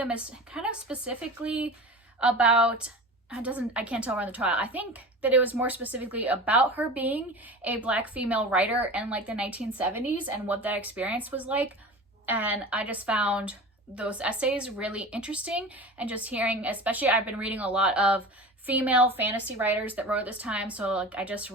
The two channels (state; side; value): normal; both; correlation 0.33